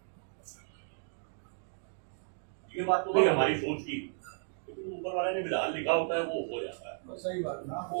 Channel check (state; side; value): silent; left; digital silence